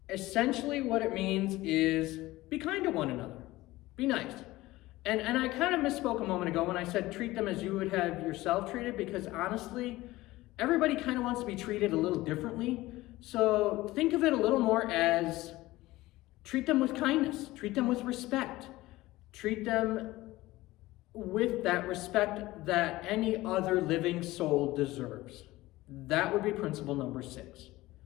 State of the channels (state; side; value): quieter; right; 18.2 dB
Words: essentially what it means is be kind to one another. Be nice. And I kind of misspoke a moment ago when I said treat them as you would have yourself treated, because honestly, everybody kind of wants to be treated a little differently. So think of it a little more as treat them with kindness, treat them with respect, treat them with that respect that any other living soul deserves. That would be principle number 6.